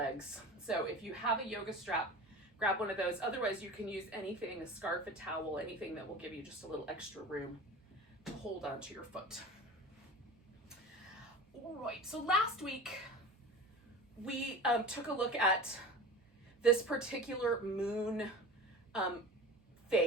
So if you have a yoga strap, grab one of those. Otherwise, you can use anything, a scarf, a towel, anything that will give you just a little extra room to hold onto your foot. All right, so last week we took a look at this particular moon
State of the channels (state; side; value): normal; both; correlation 0.34